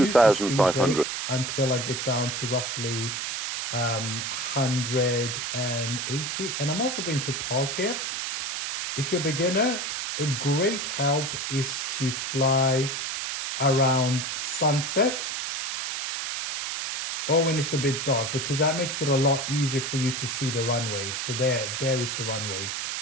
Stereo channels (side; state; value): right; noise; hiss, 3 dB below the sound